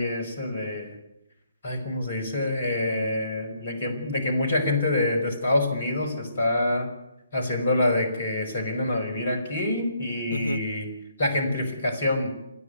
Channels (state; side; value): inverted; both; correlation -0.70